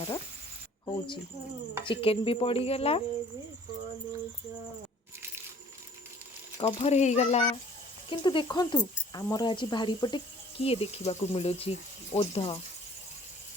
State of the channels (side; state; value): both; normal; correlation 0.54